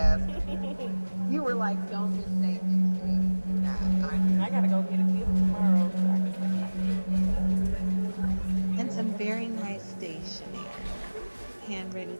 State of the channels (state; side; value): inverted; both; correlation -1.00